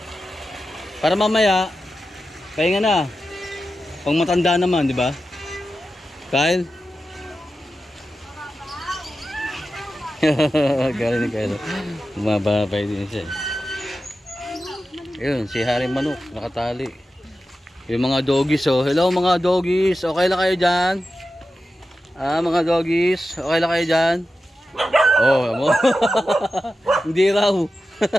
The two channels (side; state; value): both; normal; correlation 0.92